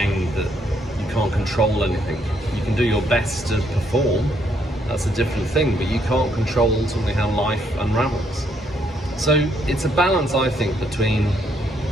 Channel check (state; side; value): normal; both; correlation 0.72